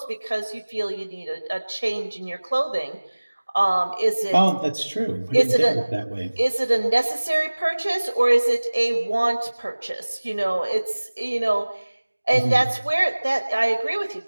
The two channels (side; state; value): both; inverted; correlation -1.00